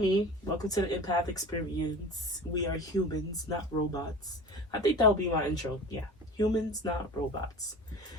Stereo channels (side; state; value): both; normal; correlation 0.36